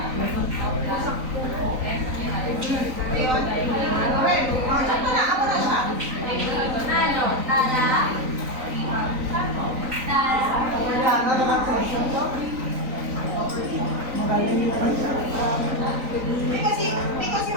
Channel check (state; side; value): late; left; 3.9 ms